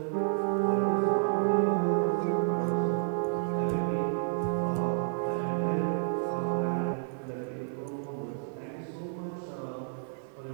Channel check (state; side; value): silent; left; 58 dB below the other